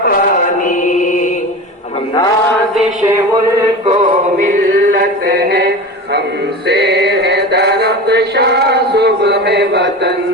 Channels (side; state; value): both; normal; correlation 0.30